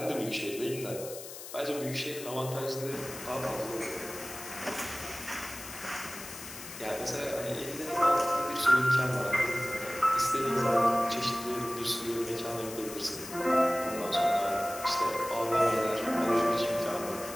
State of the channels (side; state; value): left; noise; hiss, 12 dB below the sound